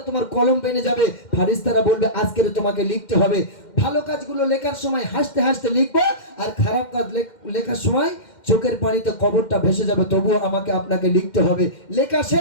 তোমার কলম বেনে যাবে। ফারিস্তারা বলবে আজকের তোমাকে লিখতে হবে। ভালো কাজগুলো লেখার সময় হাসতে হাসতে লিখবো, আর খারাপ কাজ লেখার সময় চোখের পানিতে কবরটা ভেসে যাবে, তবুও আমাকে আপনাকে লিখতে হবে। লেখা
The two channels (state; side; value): late; right; 2.1 ms